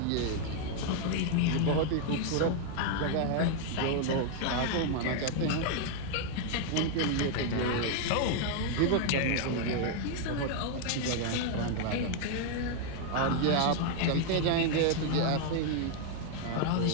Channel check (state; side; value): different; both; correlation 0.00